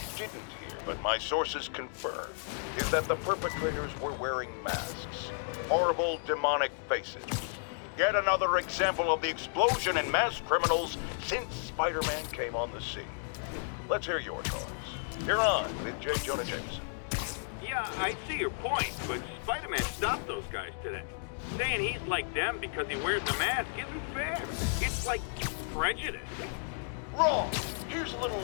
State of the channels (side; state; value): right; silent; digital silence